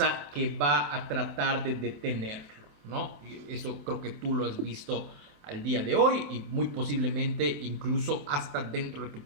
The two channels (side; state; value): left; late; 28 ms